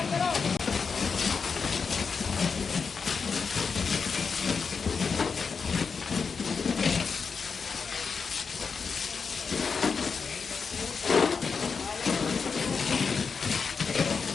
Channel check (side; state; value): right; quieter; 5.5 dB